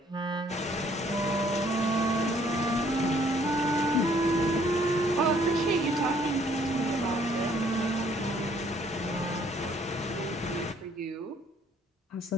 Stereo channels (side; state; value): both; normal; correlation 0.62